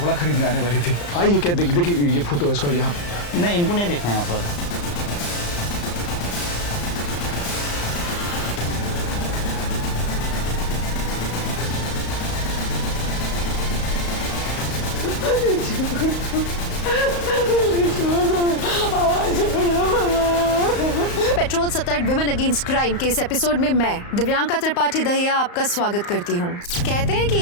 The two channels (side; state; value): right; late; 35 ms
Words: खरीदने आने वाली थी। आइए, क्या देखिए ये फोटो है इसका यहाँ। नहीं, इनको नहीं देखा यहाँ पर। पेट्रोल सतर्क विमेन अगेंस्ट क्राइम के इस एपिसोड में मैं दिव्यांका त्रिपाठी दहिया आपका स्वागत करती हूँ। कहते हैं कि